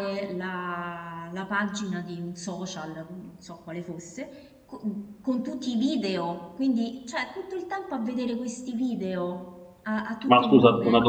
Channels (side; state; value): both; identical; correlation 1.00